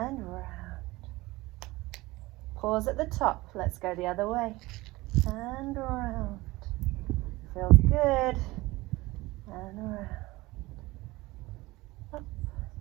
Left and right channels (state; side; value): quieter; left; 20.4 dB